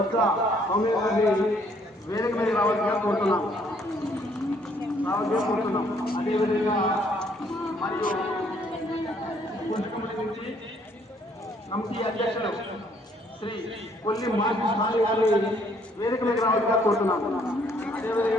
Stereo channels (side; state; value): both; normal; correlation 0.65